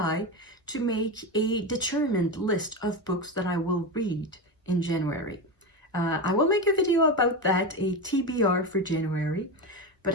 to make a determined list of books that I will read in January. I will make a video about that, a TBR for January, but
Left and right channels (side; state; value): both; normal; correlation 0.17